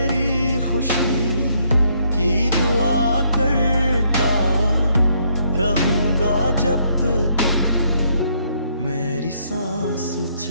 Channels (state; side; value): inverted; both; correlation -0.71